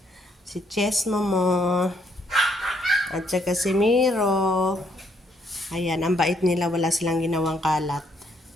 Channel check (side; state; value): both; normal; correlation 0.70